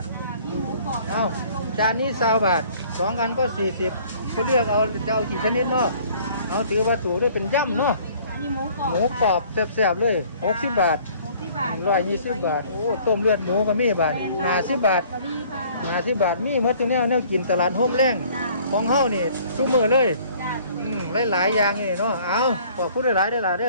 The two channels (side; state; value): both; inverted; correlation -0.55